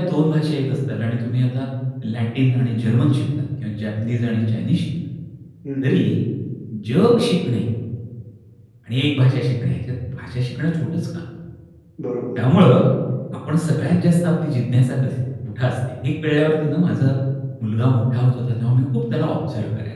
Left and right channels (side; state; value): both; identical; correlation 1.00